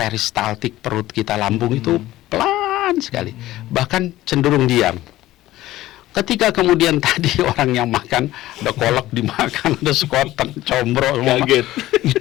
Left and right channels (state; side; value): quieter; right; 15.7 dB